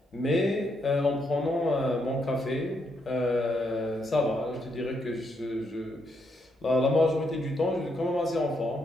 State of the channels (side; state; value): both; normal; correlation 0.78